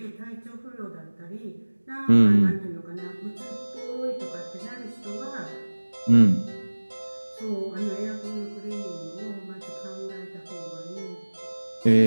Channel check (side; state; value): both; inverted; correlation -1.00